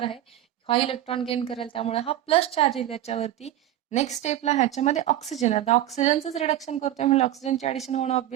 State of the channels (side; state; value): left; quieter; 12.9 dB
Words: आहे हा इलेक्ट्रॉन गेन करेल, त्यामुळे हा प्लस चार्ज येईल याच्यावरती. नेक्स्ट स्टेपला ह्याच्यामध्ये ऑक्सिजन, आता ऑक्सिजनचंच रिडक्शन करतोय म्हणजे ऑक्सिजनचे ऍडिशन होणं